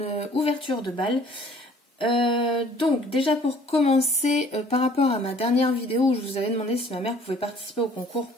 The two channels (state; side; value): normal; both; correlation 0.55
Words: ouverture de bal. Donc déjà pour commencer, par rapport à ma dernière vidéo où je vous avais demandé si ma mère pouvait participer au concours